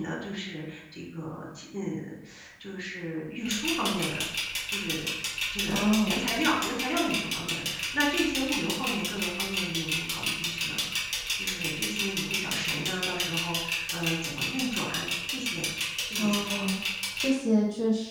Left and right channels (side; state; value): both; identical; correlation 1.00